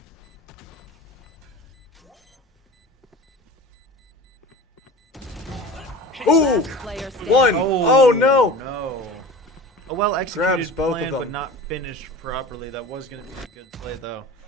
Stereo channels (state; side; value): normal; both; correlation 0.36